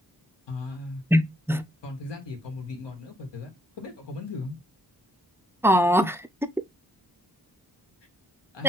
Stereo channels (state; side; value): normal; both; correlation 0.72